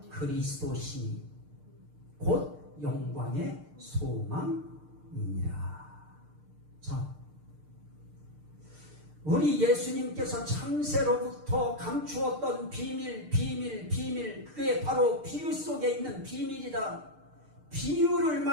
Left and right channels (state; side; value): late; left; 6.6 ms